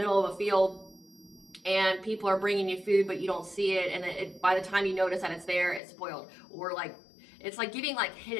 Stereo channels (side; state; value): right; drops out; at 5.8 s